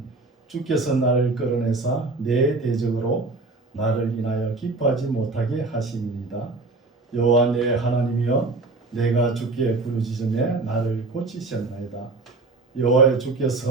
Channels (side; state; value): left; quieter; 3.4 dB